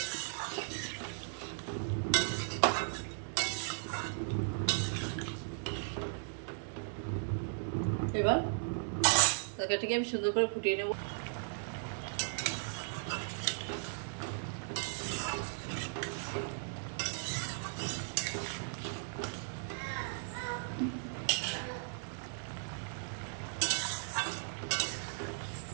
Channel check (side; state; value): left; silent; 53 dB below the other